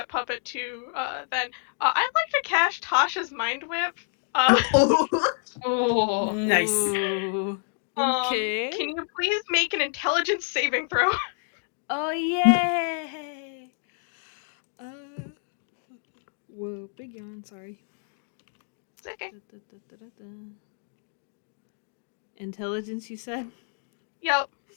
puppet 2. Then, I'd like to cast Tasha's Mind Whip. Oh. Nice. Ooh. Okay. Can you please make an intelligence saving throw? Oh, yay! Whoa, big yawn, sorry. It's okay. Intelligence, you said? Yep.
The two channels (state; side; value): silent; right; 60 dB below the other